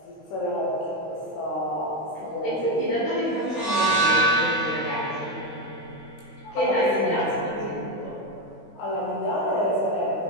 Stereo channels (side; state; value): right; late; 17 ms